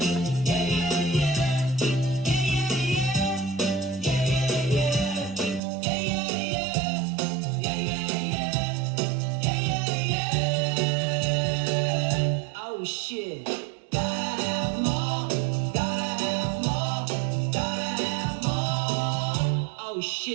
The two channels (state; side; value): drops out; left; at 5.6 s